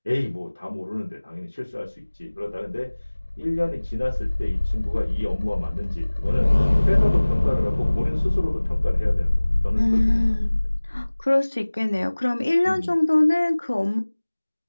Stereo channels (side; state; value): both; inverted; correlation -1.00